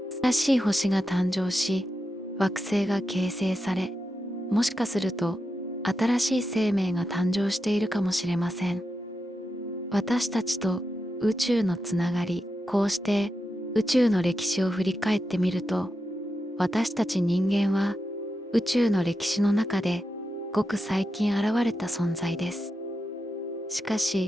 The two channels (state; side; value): normal; both; correlation 0.88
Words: 新しい星が誕生し、惑星が形成され、もしかすると新しい生命が誕生しているかもしれません。私たちと宇宙のつながり、こうして宇宙の歴史を振り返ってみると、私たち人間は宇宙の歴史の中でごく最近現れた存在です。しか